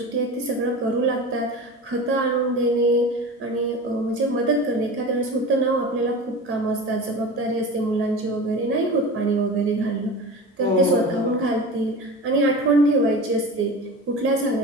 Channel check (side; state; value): both; normal; correlation 0.31